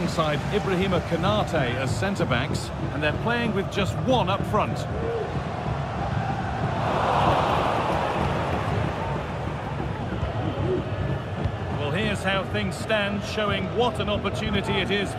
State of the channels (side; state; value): both; identical; correlation 1.00